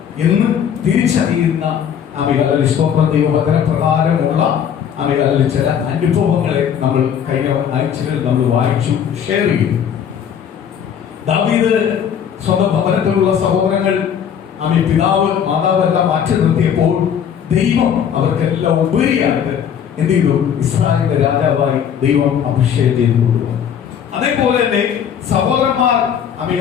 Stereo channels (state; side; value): quieter; right; 8.4 dB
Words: എന്ന് തിരിച്ചറിയുന്ന അമേയാലയ സ്തോത്രം ദൈവവചന പ്രകാരമുള്ള അമേയാലയ ചില അനുഭവങ്ങളെ നമ്മൾ കഴിഞ്ഞ ആഴ്ചകളിൽ നമ്മൾ വായിച്ചു, ഷെയർ ചെയ്തു. ദാവീദ് സ്വന്തം ഭവനത്തിലുള്ള സഹോദരങ്ങൾ പിതാവ് മാതാവ് എല്ലാം മാറ്റി നിർത്തിയപ്പോൾ ദൈവം അവർക്കെല്ലാം ഉപരിയായിട്ട് എന്ത് ചെയ്തു? ഇസ്രായേലിന്റെ രാജാവായി ദൈവം അഭിഷേകം ചെയ്തു കൊണ്ടുവന്നു. അതേപോലെ തന്നെ സഹോദരന്മാർ